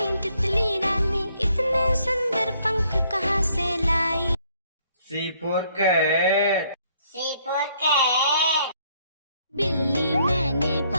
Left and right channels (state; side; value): inverted; both; correlation -0.67